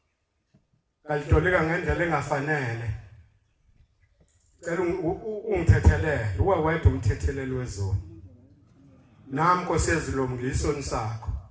ngalitolika ngendlela engafanele cela ungithethelele uwe wedwa umthetheleli wezona nami Nkosi yezilo ngisoni sakho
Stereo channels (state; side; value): identical; both; correlation 1.00